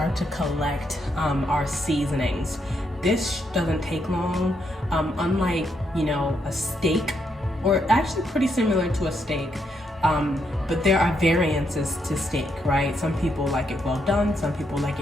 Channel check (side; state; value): both; normal; correlation 0.78